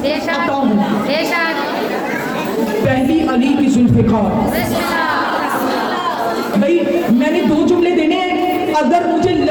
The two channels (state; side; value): identical; both; correlation 1.00